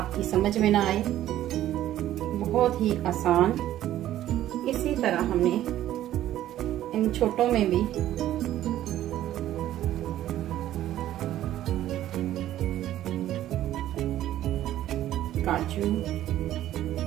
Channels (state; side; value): quieter; left; 13.0 dB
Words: समझ में ना आए, बहुत ही आसान। इसी तरह हमने इन छोटों में भी काजू